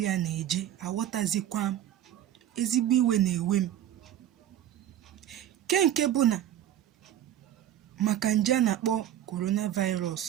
na-eje. Aghọtazikwa m, ezigbo iwe na-ewe m. Nke bụ na maka nje a na-akpọ coronavirus,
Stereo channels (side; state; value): left; quieter; 11.5 dB